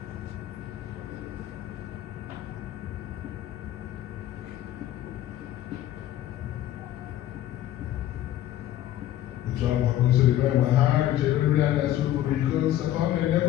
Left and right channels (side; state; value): right; quieter; 12.8 dB